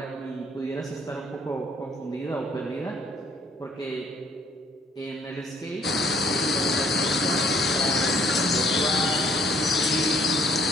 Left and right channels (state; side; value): normal; both; correlation 0.62